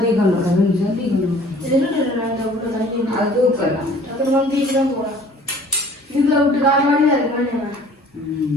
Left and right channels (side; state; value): both; normal; correlation 0.52